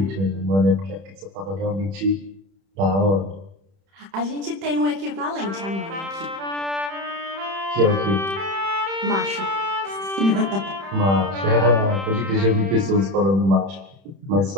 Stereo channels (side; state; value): left; late; 31 ms